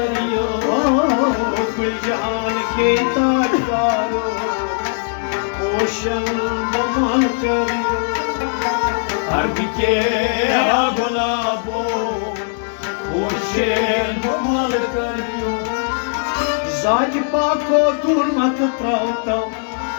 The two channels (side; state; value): right; silent; digital silence